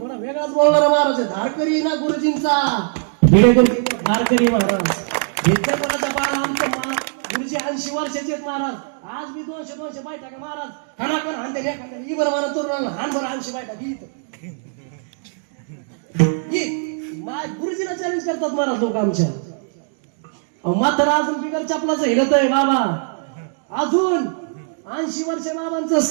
वेगळाच बोलणार महाराज. धारकरी ना गुरुजींचा धारकरी महाराज. विद्यापीठाचा बाळ आमचं गुरुजी 80 वर्षाचे आहेत महाराज. आज मी 200 बायटा का महाराज, खानाकन हानते एखाद्या ही बरं मला तरुणाला हान बरं 80 बायटा गुरुजीला चॅलेंज करतात महाराज लोक आमच्या. मात्र अजून बिगर चपलाचं हिरत आहे बाबा, अजून 80 वर्ष बाबांचं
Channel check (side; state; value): left; silent; digital silence